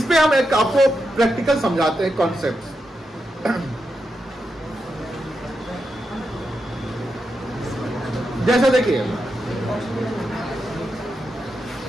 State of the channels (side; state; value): both; normal; correlation 0.86